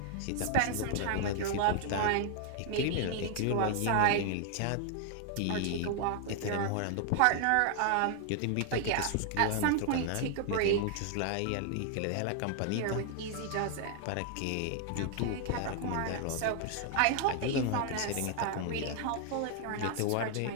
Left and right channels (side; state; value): both; different; correlation 0.00